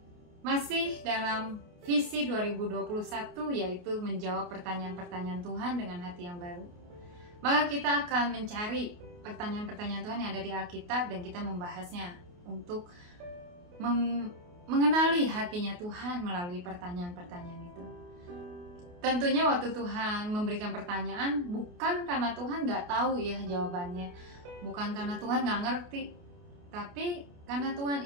masih dalam visi 2021, yaitu menjawab pertanyaan-pertanyaan Tuhan dengan hati yang baru. Maka kita akan mencari pertanyaan-pertanyaan Tuhan yang ada di Alkitab dan kita membahasnya untuk mengenali hatinya Tuhan melalui pertanyaan-pertanyaan itu. Tentunya waktu Tuhan memberikan pertanyaan, bukan karena Tuhan nggak tahu ya jawabannya, bukan karena Tuhan nggak ngerti, tapi karena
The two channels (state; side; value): late; left; 28 ms